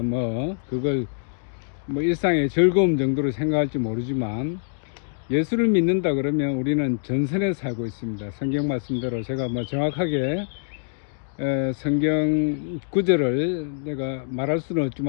뭐 그걸 뭐 일상의 즐거움 정도로 생각할지 모르지만, 예수를 믿는다 그러면 우리는 전선에 살고 있습니다. 성경 말씀대로 제가 뭐 정확하게 성경 구절을 내가 말할 수는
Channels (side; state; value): right; silent; digital silence